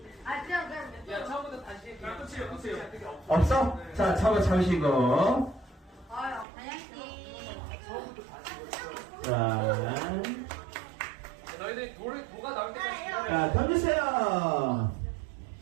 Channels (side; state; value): left; drops out; at 6.5 s